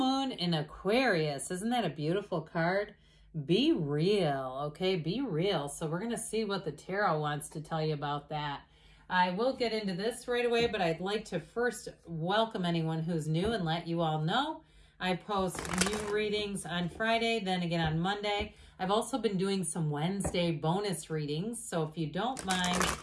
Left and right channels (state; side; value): identical; both; correlation 1.00